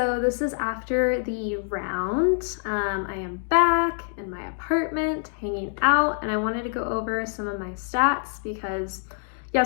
this is after the round. I am back in my apartment hanging out, and I wanted to go over some of my stats because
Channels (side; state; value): right; silent; digital silence